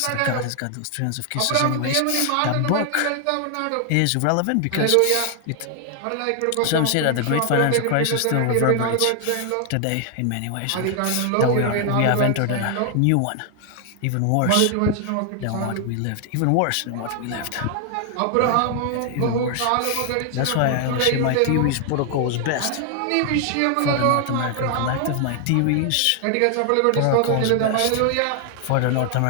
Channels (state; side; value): different; both; correlation 0.00